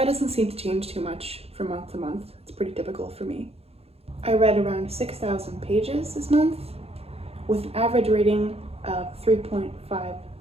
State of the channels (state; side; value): late; left; 0.29 ms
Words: doesn't seem to change too much from month to month. It's pretty typical for me. I read around 6,000 pages this month with an average rating of 3.5